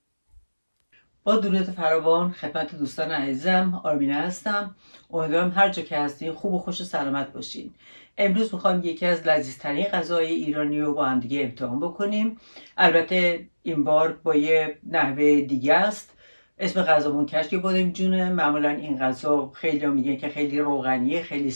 با درود فراوان خدمت دوستان عزیزم، آرمینه هستم. امیدوارم هر جا که هستین خوب و خوش و سلامت باشین. امروز میخوایم یکی از لذیذترین غذاهای ایرانی رو با هم دیگه امتحان بکنیم. البته این بار با یه نحوه دیگه است. اسم غذامون کشک بادمجونه. معمولا این غذا خیلی میگن که خیلی روغنیه، خیلی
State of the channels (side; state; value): both; inverted; correlation -1.00